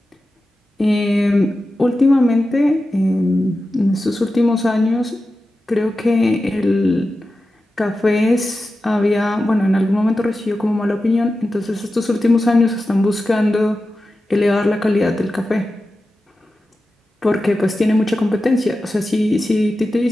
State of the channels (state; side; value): normal; both; correlation 0.93